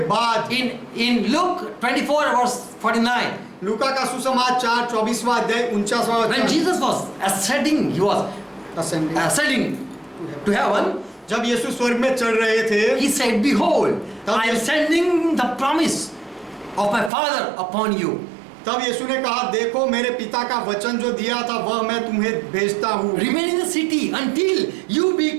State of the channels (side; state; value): left; drops out; at 17.1 s